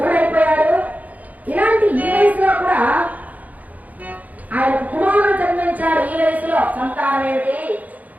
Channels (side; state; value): left; late; 0.076 ms